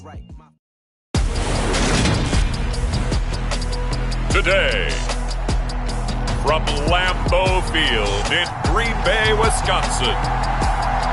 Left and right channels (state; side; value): identical; both; correlation 1.00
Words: Today, from Lambeau Field in Green Bay, Wisconsin,